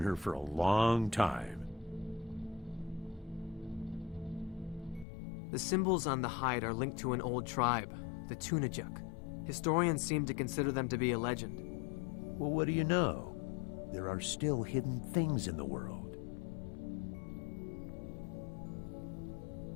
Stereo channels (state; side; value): drops out; right; at 5.1 s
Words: for a long time. The symbols on the hide are linked to an old tribe, the Tunajuk. Historians seem to consider them to be a legend. Well, what do you know? There are still hidden things in the world.